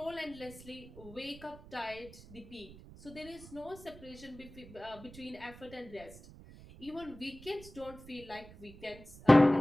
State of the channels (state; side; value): noise; right; rumble, 18 dB below the sound